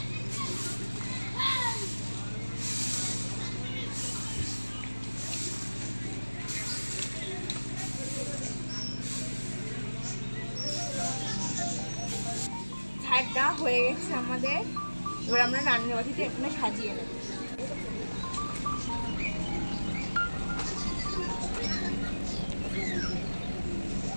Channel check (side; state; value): both; inverted; correlation -1.00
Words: ঝাড়টা হয়ে গেছে আমাদের, এবার আমরা রান্নাবাটিটা এখানে সাজিয়ে নেব।